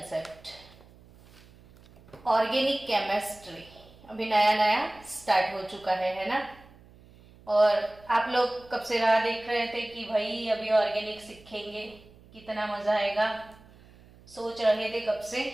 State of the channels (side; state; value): right; noise; hum, 24 dB below the sound